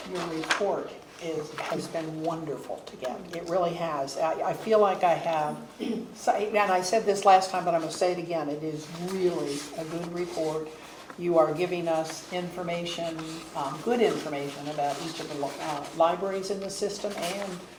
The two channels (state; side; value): identical; both; correlation 1.00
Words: your report has been wonderful to get. It really has. I feel like I have, and I said this last time, but I'm going to say it again. It is really a good report. You are giving us information, good information about each of the libraries in the system and